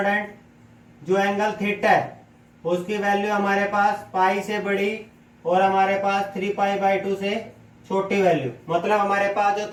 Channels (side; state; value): both; identical; correlation 1.00